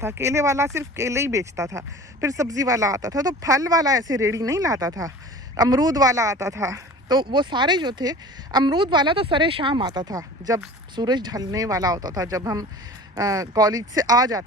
केले वाला सिर्फ केले ही बेचता था। फिर सब्ज़ी वाला आता था, तो फल वाला ऐसे रेडी नहीं लाता था। अमरूद वाला आता था, तो वो सारे जो थे, अमरूद वाला तो सरे शाम आता था, जब सूरज ढलने वाला होता था, जब हम कॉलेज से आ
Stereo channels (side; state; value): both; normal; correlation 0.40